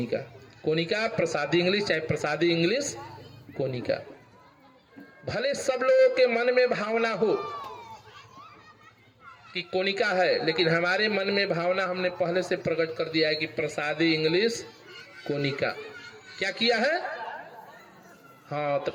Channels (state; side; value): identical; both; correlation 1.00